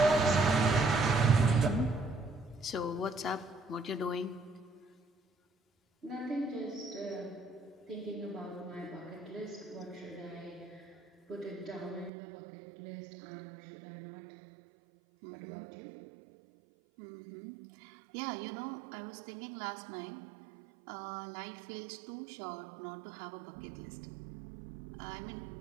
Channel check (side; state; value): left; drops out; at 12.1 s